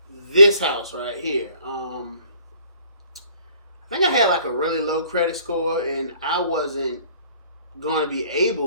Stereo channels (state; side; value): inverted; both; correlation -0.57